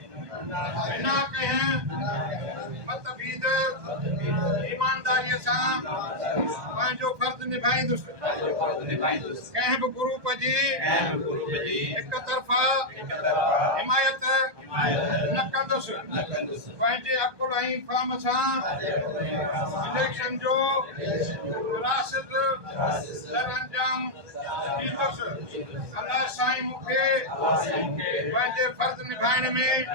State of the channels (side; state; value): left; late; 1.2 ms